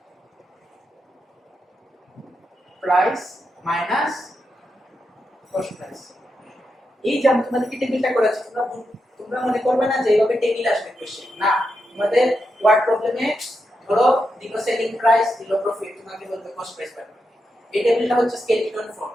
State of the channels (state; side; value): normal; both; correlation 0.86